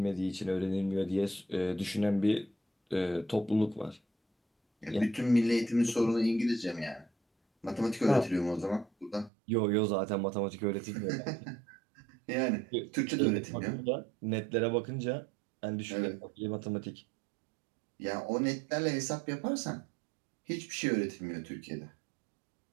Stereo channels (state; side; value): drops out; left; at 9.3 s